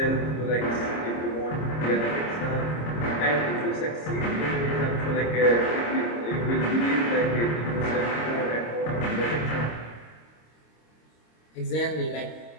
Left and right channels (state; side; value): late; right; 26 ms